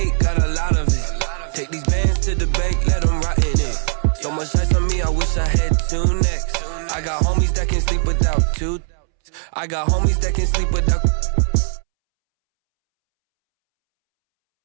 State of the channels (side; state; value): left; silent; 66 dB below the other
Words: got a lot of it. Take these bands to the bank, let them rot in it. So much ice on me, I wish I had 2 necks. I got homies that can sleep without 2. I got homies that can sleep without.